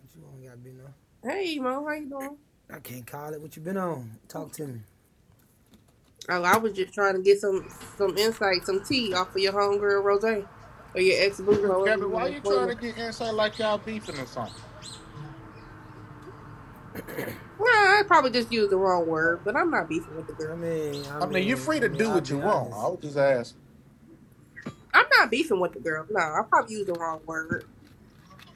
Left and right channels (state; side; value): identical; both; correlation 1.00